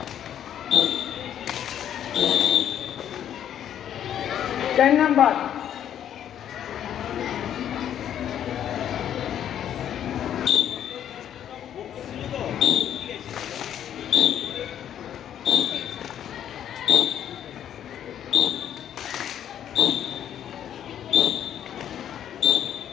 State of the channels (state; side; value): quieter; right; 10.1 dB